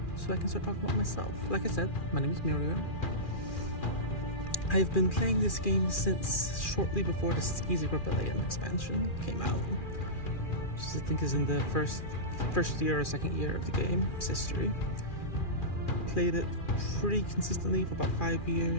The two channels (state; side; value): late; right; 2.4 ms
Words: so I can start talking about myself. Like I said, my name is Mirior. I've been playing this game since shortly before the Skeezy Rebellion expansion came out, which I think is in the first year or second year of the game's history. Played it pretty consistently for about 5